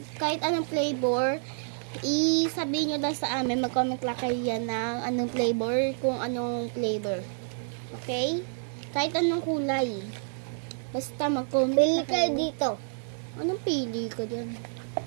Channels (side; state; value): left; silent; digital silence